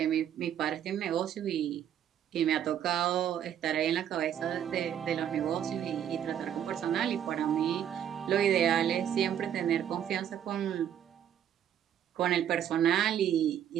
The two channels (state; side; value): quieter; left; 9.8 dB